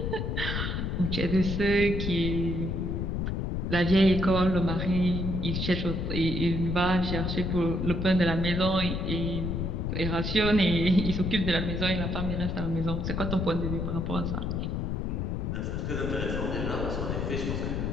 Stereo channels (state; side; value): noise; left; rumble, 1 dB below the sound